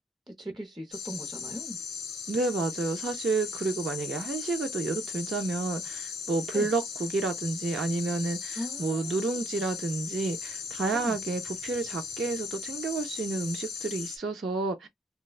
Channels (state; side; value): normal; both; correlation 0.67